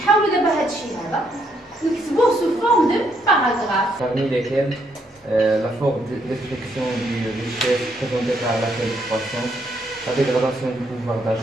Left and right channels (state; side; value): normal; both; correlation 0.73